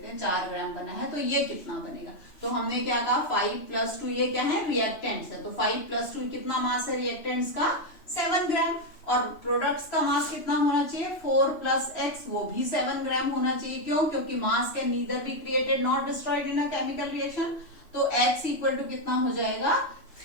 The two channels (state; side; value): late; right; 3.0 ms